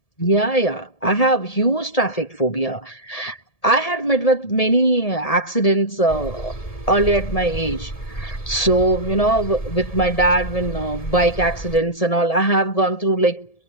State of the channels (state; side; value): late; right; 1.7 ms